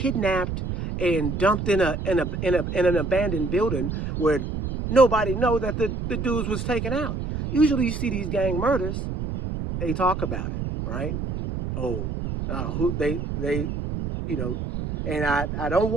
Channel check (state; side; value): noise; right; rumble, 4 dB below the sound